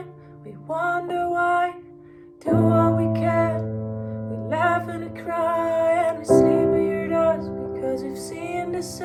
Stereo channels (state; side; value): identical; both; correlation 1.00